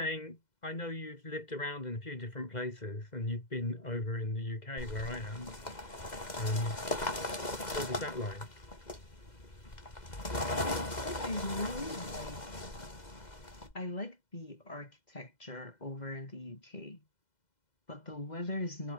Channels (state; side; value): late; right; 2.0 ms